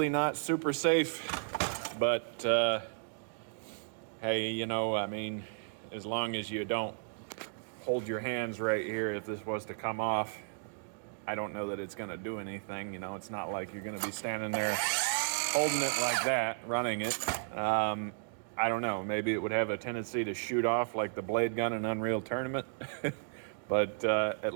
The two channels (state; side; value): silent; left; digital silence